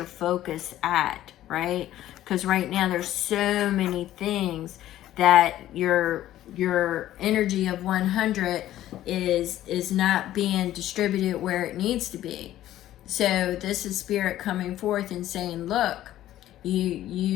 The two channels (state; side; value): quieter; right; 13.4 dB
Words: focus at, right? Because right now there's so many things that your energy of 100 is not being distributed where it needs to be. So this is spirit coming forth and saying, look,